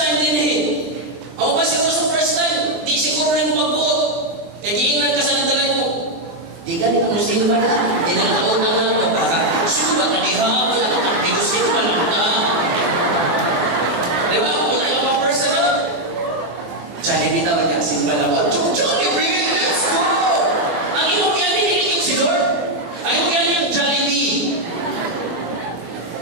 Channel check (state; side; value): late; left; 24 ms